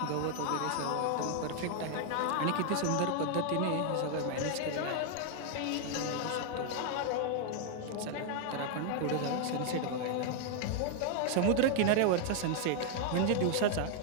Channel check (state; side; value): different; both; correlation 0.00